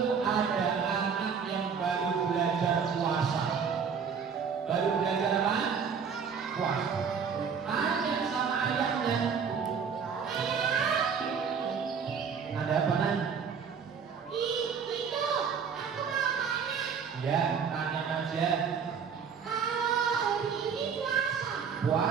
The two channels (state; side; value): quieter; left; 6.4 dB